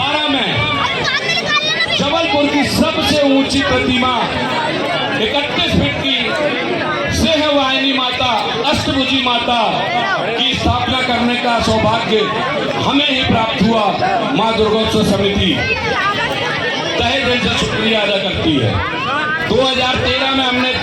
में जबलपुर की सबसे ऊंची प्रतिमा 31 फीट की सिंहवाहिनी माता, अष्टभुजी माता की स्थापना करने का सौभाग्य हमें ही प्राप्त हुआ। मां दुर्गोत्सव समिति तहे दिल से शुक्रिया अदा करती है। 2013 में हमने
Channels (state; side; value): identical; both; correlation 1.00